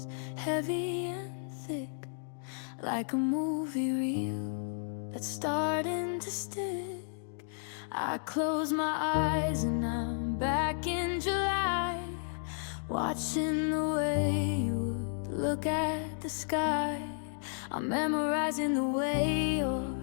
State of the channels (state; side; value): silent; right; digital silence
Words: heavy and thick, like a movie reel that's starting to stick. I close my eyes and I'm back in July, watching the way you would look at the sky. I'm memorizing the way your